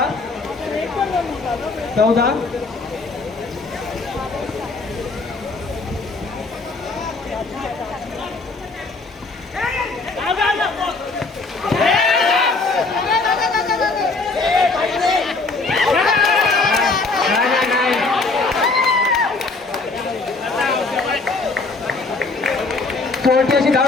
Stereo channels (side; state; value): right; quieter; 3.7 dB